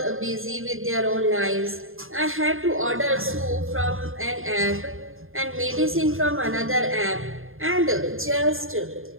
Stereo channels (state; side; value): late; left; 0.60 ms